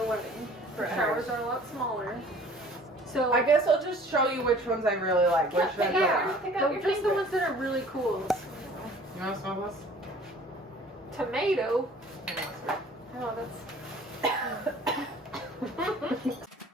wedding. The showers are a lot smaller. So I guess I'll just show you which ones I really like. Which ones just the ones that are really cool. You want to smell this? Tomato. Oh, that's.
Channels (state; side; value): normal; both; correlation 0.50